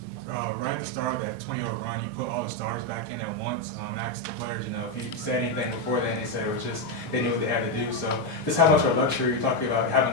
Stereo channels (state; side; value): normal; both; correlation 0.05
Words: Right at the start of that 20-0 run, you put all the stars back in at once. Asked the players, if you said anything before then, they said it was just they knew what they had to do. So just how much of a luxury you're talking about